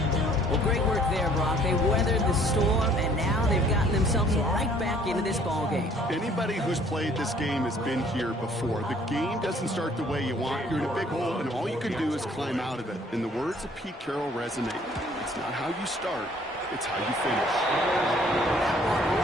Well, great work there, Brock. They weathered the storm, and now they've gotten themselves right back into this ball game. Anybody who's played this game has been here before. The game doesn't start the way you want. You're in a big hole, and all you can do is climb out of it. And the words of Pete Carroll resonate. It's not how you start, it's how you finish. That one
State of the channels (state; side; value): normal; both; correlation 0.58